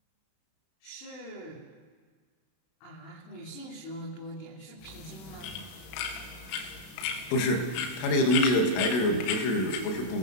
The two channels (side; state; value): right; late; 32 ms